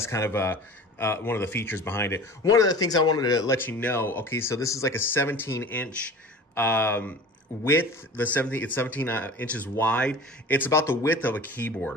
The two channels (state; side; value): normal; both; correlation 0.39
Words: kind of one of the features behind it. One of the things I wanted to let you know, okay, so this is like a 17-inch width. It's 17 inches wide. It's about the width of a keyboard